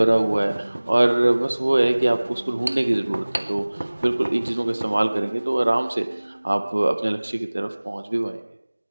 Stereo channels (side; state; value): both; inverted; correlation -1.00